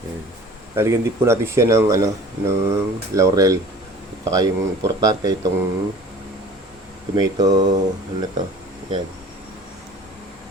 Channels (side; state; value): both; normal; correlation 0.45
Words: Ayan. Lalagyan din po natin siya ng, ng laurel. At saka yung importante itong tomato, ano to, yan.